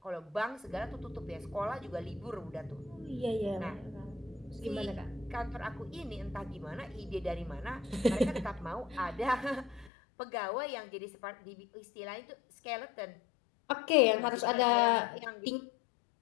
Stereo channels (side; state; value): right; drops out; at 9.9 s